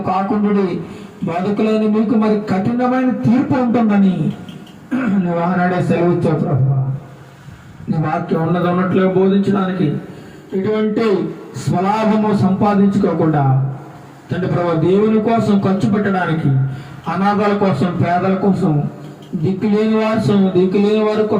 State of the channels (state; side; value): identical; both; correlation 1.00